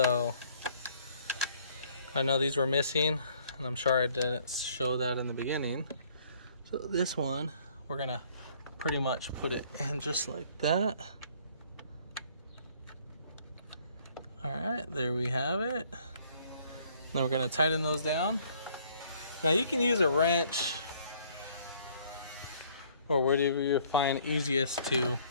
I know these were missing, and I'm sure I didn't show that in the beginning. So this one, we're gonna pretty much put it in just like that. All right, there we have it. Then we're gonna tighten those down. Now you can use a wrench or whatever you find easiest to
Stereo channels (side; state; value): both; inverted; correlation -0.61